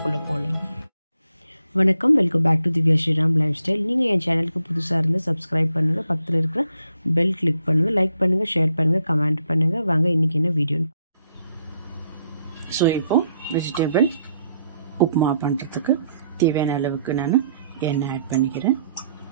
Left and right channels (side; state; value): both; inverted; correlation -0.73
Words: போகலாம். வணக்கம், welcome back to Divya Sriram lifestyle. நீங்கள் என் சேனலுக்கு புதுசாக இருந்து சப்ஸ்கிரைப் பண்ணுங்கள், பக்கத்தில் இருக்கிற பெல் கிளிக் பண்ணுங்கள், லைக் பண்ணுங்கள், ஷேர் பண்ணுங்கள், கமெண்ட் பண்ணுங்கள். வாங்க இன்றைக்கி என்ன வீடியோன்னு. ஸோ இப்போது வெஜிடபிள் உப்மா பண்ணுறதுக்கு தேவையான அளவுக்கு நான் எண்ணெய் ஆட் பண்ணிக்கிறேன்.